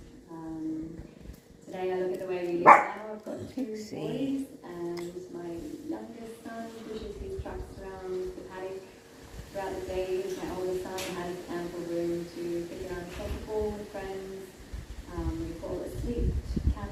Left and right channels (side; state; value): both; identical; correlation 1.00